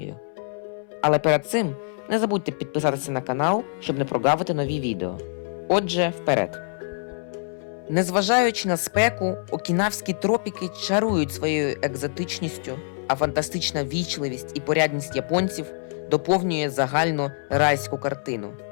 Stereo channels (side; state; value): right; silent; 62 dB below the other